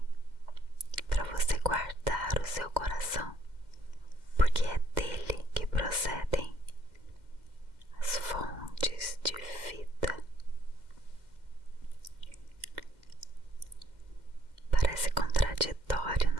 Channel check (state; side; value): late; left; 2.1 ms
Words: para você guardar o seu coração, porque é dele que procedem as fontes de vida. Parece contraditório,